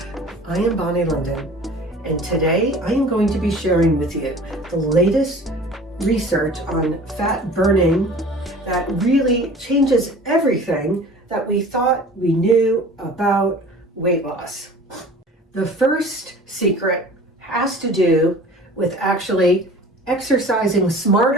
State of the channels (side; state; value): both; normal; correlation 0.44